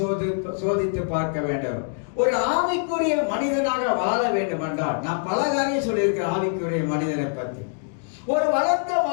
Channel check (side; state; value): right; silent; digital silence